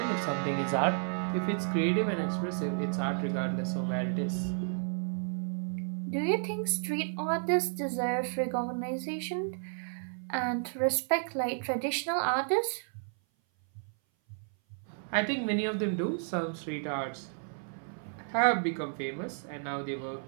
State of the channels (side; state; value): left; silent; 56 dB below the other